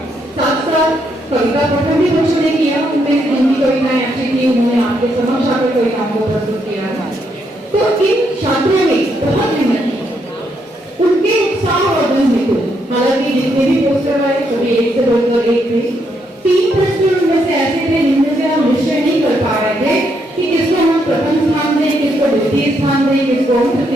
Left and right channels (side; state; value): both; normal; correlation 0.76